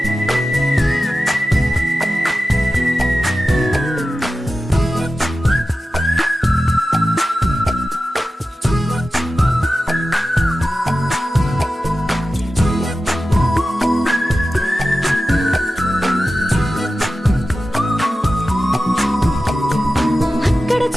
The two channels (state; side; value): normal; both; correlation 0.94